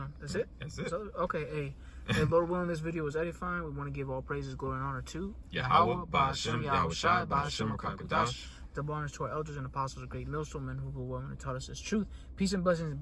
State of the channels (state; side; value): identical; both; correlation 1.00